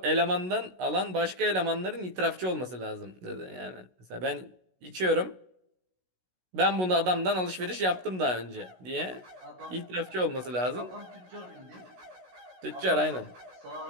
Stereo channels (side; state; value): left; late; 16 ms